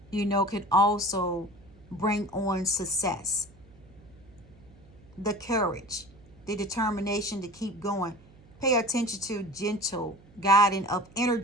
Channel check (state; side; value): noise; right; hum, 25 dB below the sound